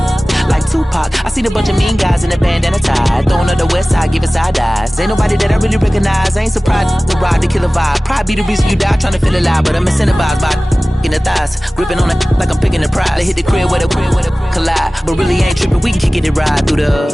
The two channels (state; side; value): normal; both; correlation 0.98